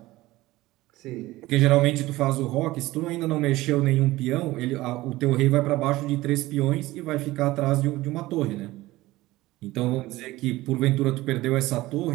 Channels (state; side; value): quieter; left; 18.2 dB